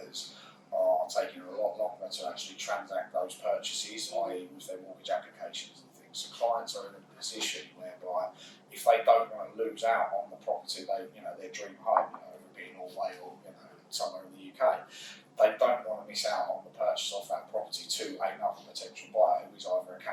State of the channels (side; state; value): both; identical; correlation 1.00